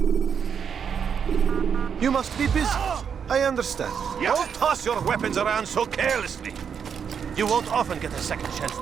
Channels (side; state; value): left; quieter; 7.2 dB